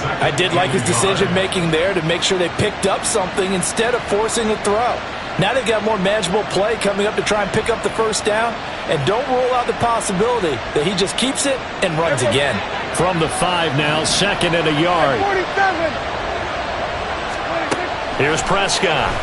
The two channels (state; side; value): identical; both; correlation 1.00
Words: I did like his decision-making there to make sure they picked up something instead of forcing a throw. Now they've got more manageable play coming up to try and pick up the first down. And don't rule out the possibility that he just keeps it and runs again. From the 5 now, 2nd and a yard. Here's Prescott.